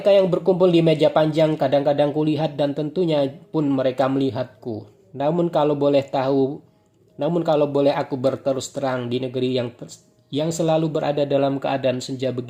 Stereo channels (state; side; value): identical; both; correlation 1.00